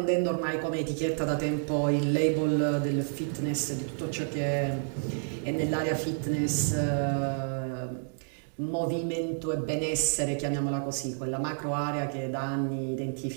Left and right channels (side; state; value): left; silent; digital silence